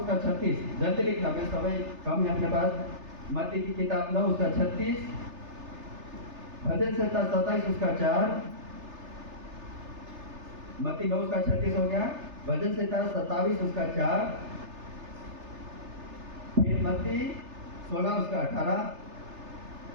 36, जल्दी लिखना, मैं समय कम है अपने पास। मत्ती की किताब 9 उसका 36, भजन संहिता 27 उसका 4, मत्ती 9 उसका 36 हो गया, भजन संहिता 27 उसका 4, फिर मत्ती 16 उसका 18,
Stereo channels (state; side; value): late; left; 3.3 ms